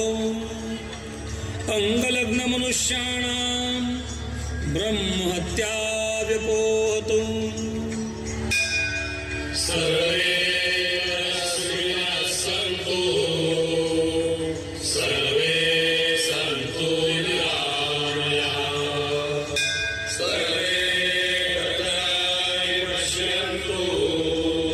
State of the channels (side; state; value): both; identical; correlation 1.00